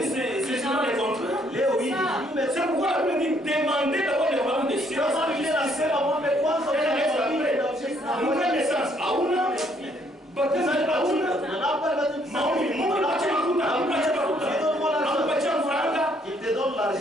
c'est justement les contraires. C'est pourquoi la Bible dit demandez d'abord le royaume des cieux. Nouvelle naissance, auna, baptême auna, maombi, Mungu anapatia mafuta, anapatia mfranga,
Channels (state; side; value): normal; both; correlation 0.67